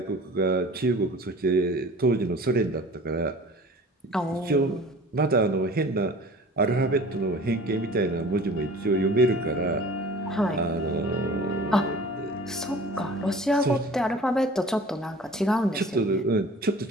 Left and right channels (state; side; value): normal; both; correlation 0.44